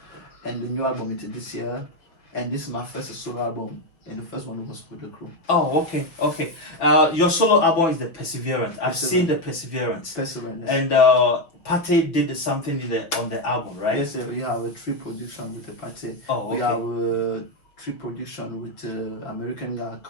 and the new album is this year, and this is my first solo album. And the first one was with the crew. Oh, okay, okay. Your solo album is the Perseverance. I've seen the Perseverance. Perseverance. And Pate did something on the album, right? Yes, we have a 3 production with the Pate. Oh, okay. We have a 3 production with American guy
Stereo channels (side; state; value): right; late; 5.7 ms